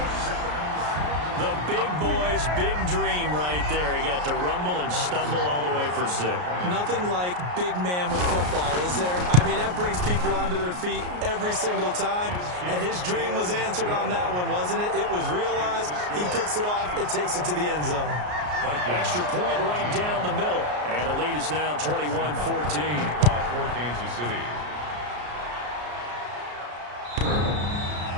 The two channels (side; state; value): left; late; 33 ms